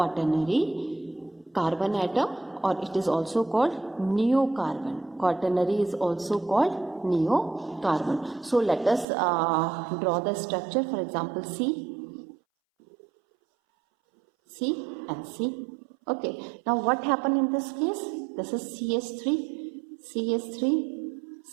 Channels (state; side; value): drops out; left; at 9.1 s